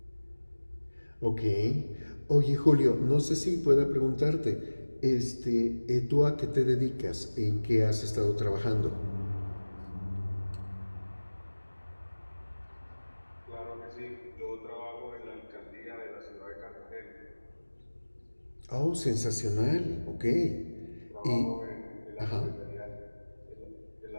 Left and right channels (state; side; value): inverted; both; correlation -1.00